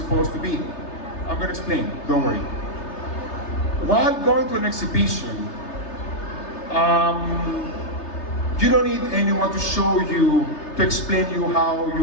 to be. I'm going to explain. Don't worry. While going to an exhibition, you don't need anyone to show you, to explain you how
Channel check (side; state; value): right; late; 3.3 ms